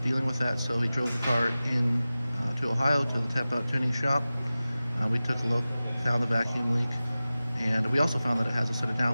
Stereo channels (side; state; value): both; inverted; correlation -0.96